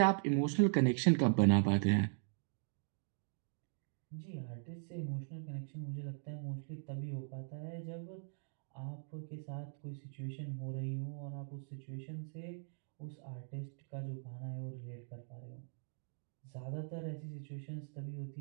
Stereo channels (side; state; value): left; silent; digital silence